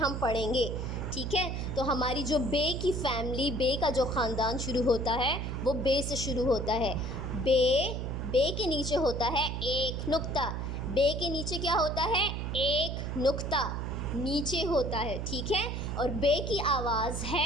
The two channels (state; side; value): noise; right; hum, 3 dB below the sound